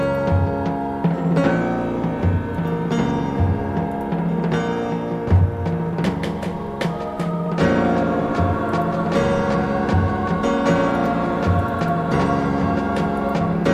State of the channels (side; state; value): both; identical; correlation 1.00